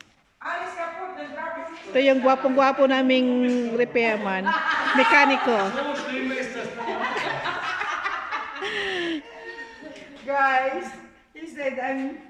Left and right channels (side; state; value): both; identical; correlation 1.00